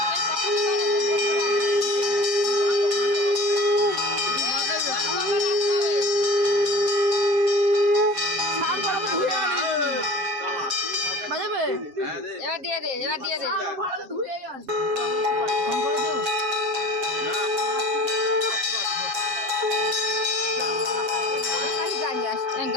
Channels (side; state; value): left; late; 7.2 ms